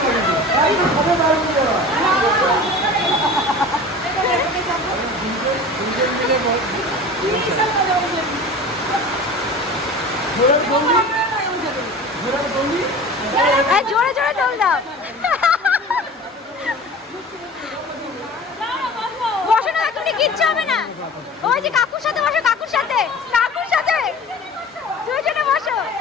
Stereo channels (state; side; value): normal; both; correlation 0.38